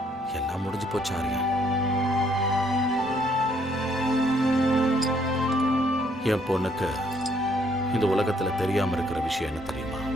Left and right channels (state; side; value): normal; both; correlation 0.68